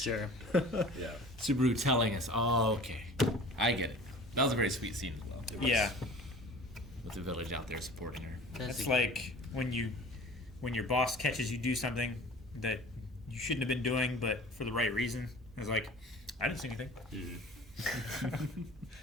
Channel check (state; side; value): normal; both; correlation 0.43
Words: Yeah. Subaru telling us, oh, okay. I get it. That was a very sweet scene as well. Yeah. With the village out there supporting her. It's like when your boss catches you do something that you shouldn't have been doing, but for the right reason. It's like, I didn't see anything.